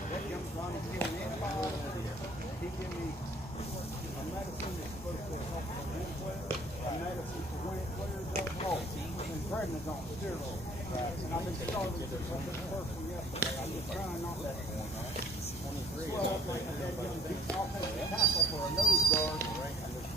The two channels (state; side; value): normal; both; correlation 0.60